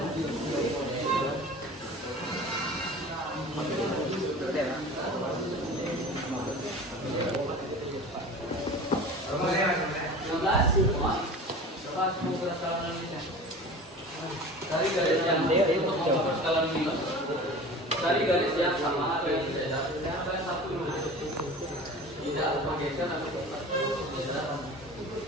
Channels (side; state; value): both; normal; correlation 0.38